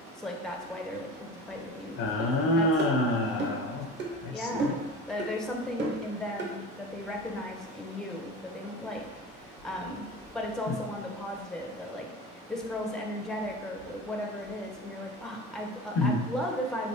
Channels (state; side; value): normal; both; correlation 0.34